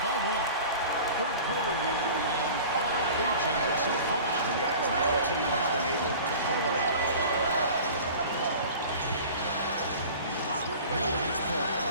1. Third quarter here, and 5 lead changes so far. And guys, neither team has been able to put away. Hill against Paul.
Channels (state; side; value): inverted; both; correlation -0.40